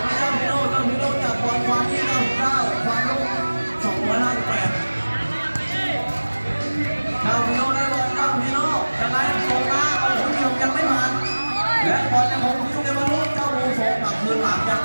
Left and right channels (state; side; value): inverted; both; correlation -1.00